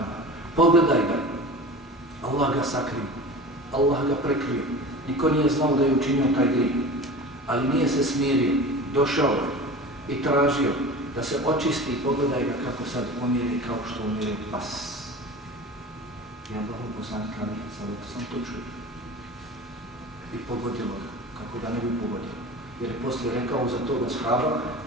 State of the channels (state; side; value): normal; both; correlation 0.35